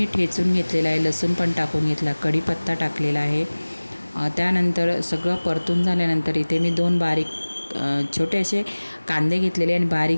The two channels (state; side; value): inverted; both; correlation -1.00